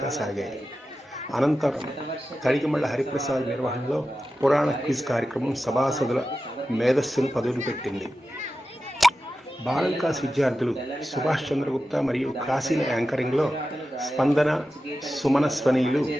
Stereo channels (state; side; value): normal; both; correlation 0.92